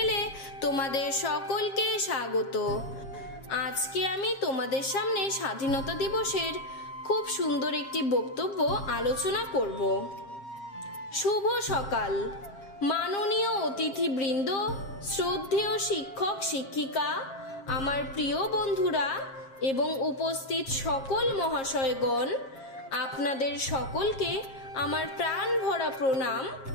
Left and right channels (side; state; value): right; late; 7.4 ms